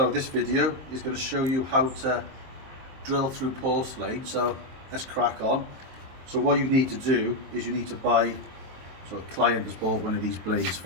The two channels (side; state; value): left; late; 23 ms